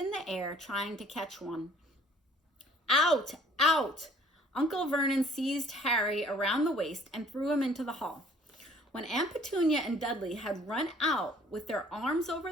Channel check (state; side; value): normal; both; correlation 0.56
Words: the air trying to catch one. Out! Out! Uncle Vernon seized Harry around the waist and threw him into the hall. When Aunt Petunia and Dudley had run out with their arms over